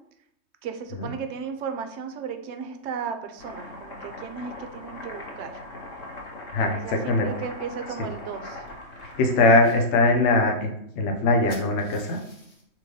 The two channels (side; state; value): right; late; 3.2 ms